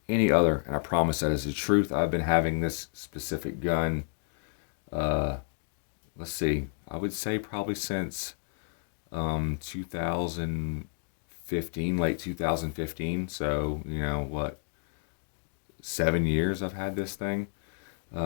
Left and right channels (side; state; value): right; silent; digital silence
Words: any other, and I promise that is the truth. I've been having this specific gun, uh, let's see, I would say probably since 2015, late 2015. So, what, 7 years I've had this thing.